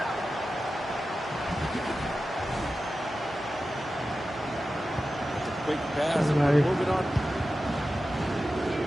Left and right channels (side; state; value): both; normal; correlation 0.93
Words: Quick pass, moving on.